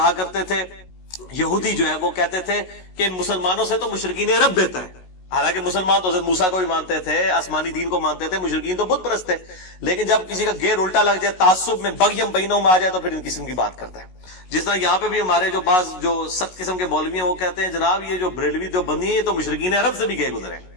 کرتے تھے، یہودی جو ہے وہ کہتے تھے کہ مسلمانوں سے تو مشرکین عرب بہتر ہے. حالانکہ مسلمان تو حضرت موسیٰ کو بھی مانتے تھے، آسمانی دین کو مانتے تھے، مشرکین تو بت پرست تھے. لیکن جب کسی کا گیر الٹا لگ جائے، تعصب میں بغیم بینوں میں آ جائے تو پھر ان قسم کی بات کرتا ہے. جس طرح یہاں پہ بھی ہمارے جو بعض جو سخت قسم کے مولوی ہیں وہ کہتے ہیں جناب یہ جو بریلوی جو بندی ہیں یہ تو مشرکین عرب سے بھی گئے گزرے.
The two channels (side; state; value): right; late; 16 ms